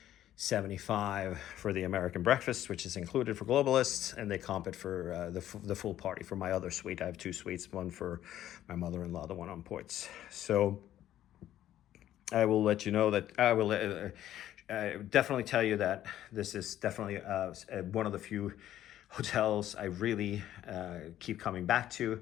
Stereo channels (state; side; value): quieter; right; 12.4 dB